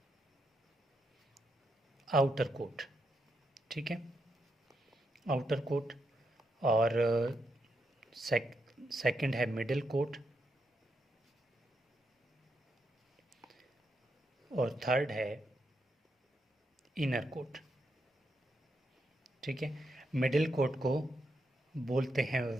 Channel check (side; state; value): both; normal; correlation 0.81